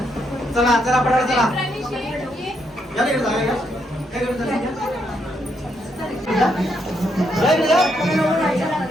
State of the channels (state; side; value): normal; both; correlation 0.77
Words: चला चला पडायला चला. या नाही जागा घ्या. काय करत